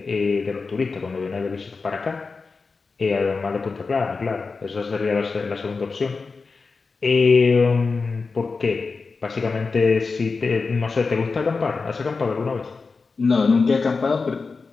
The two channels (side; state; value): right; quieter; 4.4 dB